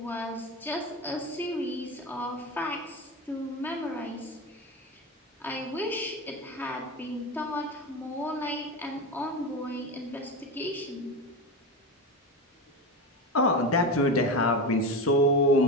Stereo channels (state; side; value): normal; both; correlation 0.22